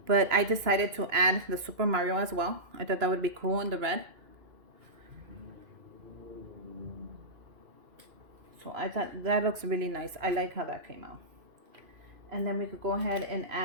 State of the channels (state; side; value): late; left; 2.9 ms